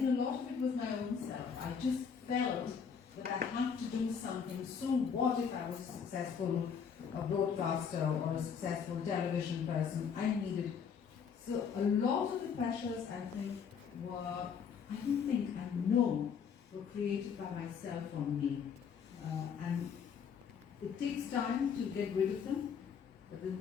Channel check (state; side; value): quieter; right; 6.7 dB